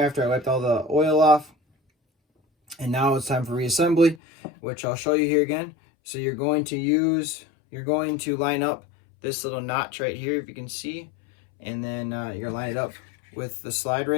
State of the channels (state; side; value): drops out; right; at 4.2 s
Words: after I wiped all the oil off. And now it's time for reassembly, which I'll show you here again. So you're going to line up this little notch right here, if you can see. And then you're going to line it up with the slide